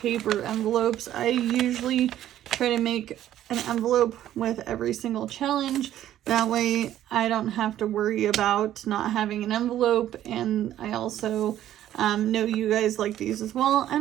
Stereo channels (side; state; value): left; quieter; 12.2 dB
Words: envelopes. I usually try to make an envelope with every single challenge. That way I don't have to worry about not having an envelope. And I also know you guys like these as well. I